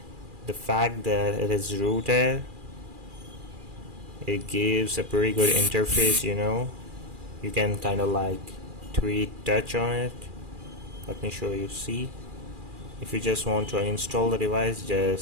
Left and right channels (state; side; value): late; left; 2.4 ms